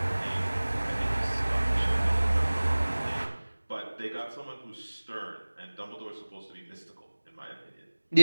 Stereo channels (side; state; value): both; inverted; correlation -1.00